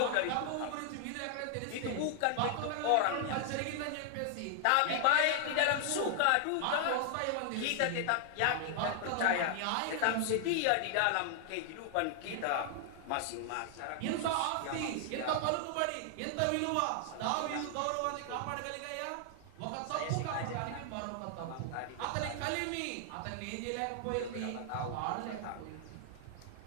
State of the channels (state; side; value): different; both; correlation 0.00